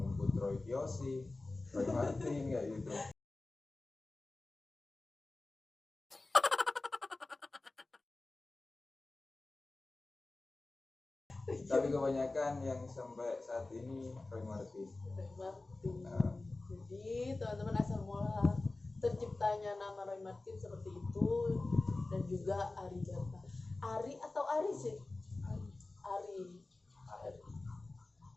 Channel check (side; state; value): right; quieter; 3.2 dB